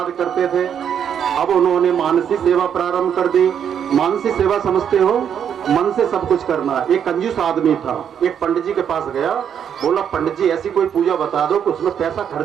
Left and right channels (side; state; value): left; quieter; 8.4 dB